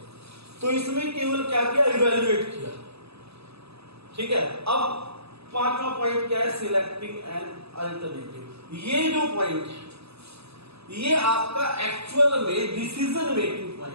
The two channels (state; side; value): late; left; 0.79 ms